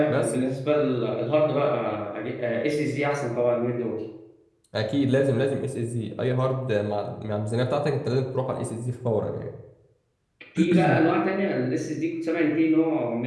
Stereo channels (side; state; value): both; identical; correlation 1.00